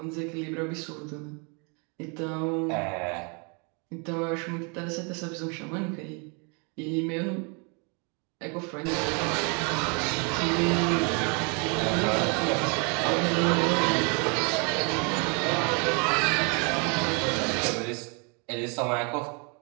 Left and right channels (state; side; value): quieter; left; 34.5 dB